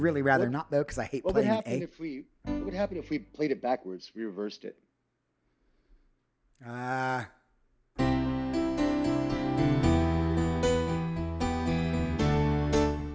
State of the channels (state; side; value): identical; both; correlation 1.00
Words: rather not though, because I hate playing an A. What would happen if we played it backwards? We reversed it.